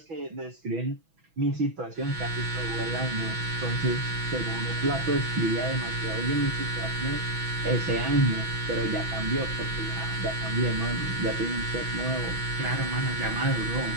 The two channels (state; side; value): late; left; 6.1 ms